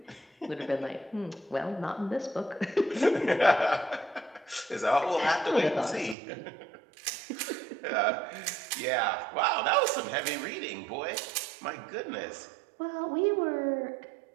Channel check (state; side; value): drops out; left; at 6.2 s